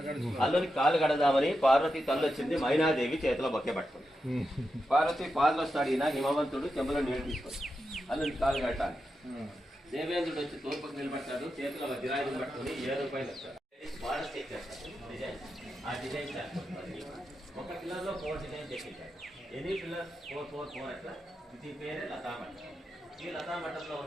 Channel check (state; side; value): normal; both; correlation 0.88